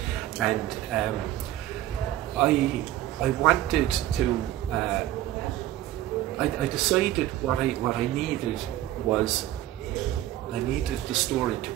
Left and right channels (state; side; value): quieter; left; 14.1 dB